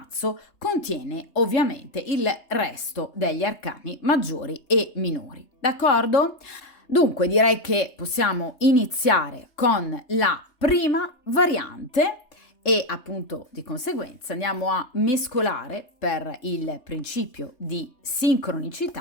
contiene ovviamente il resto degli arcani maggiori e minori, d'accordo? Dunque direi che possiamo iniziare con la prima variante e appunto di conseguenza andiamo a mescolare per il principio di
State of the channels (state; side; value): late; right; 3.3 ms